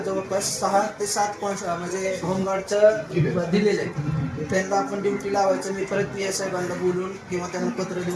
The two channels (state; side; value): identical; both; correlation 1.00